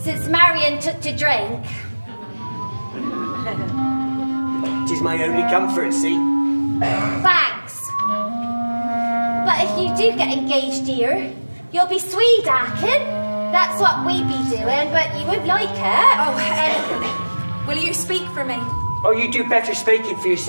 Marion took to drink. 'Tis my only comfort, see? Thanks. But if you do get engaged here, you'll be sweet-acking. That's what we be doing, but you won't like it. Oh, will you speak for me? Oh, you do better speaking for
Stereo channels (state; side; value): inverted; both; correlation -1.00